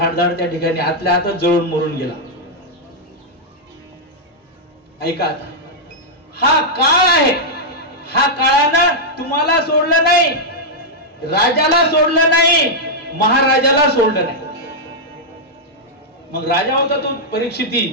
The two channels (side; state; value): both; normal; correlation -0.05